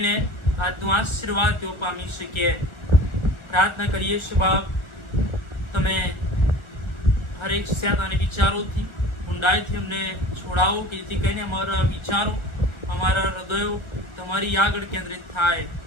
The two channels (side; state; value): right; late; 1.4 ms